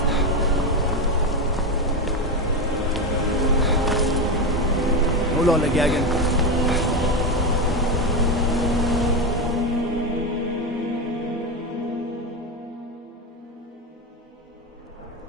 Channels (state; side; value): normal; both; correlation 0.14